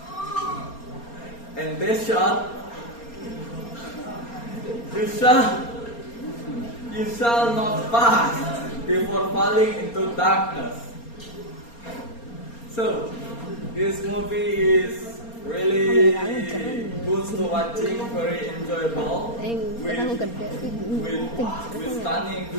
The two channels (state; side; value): late; right; 4.3 ms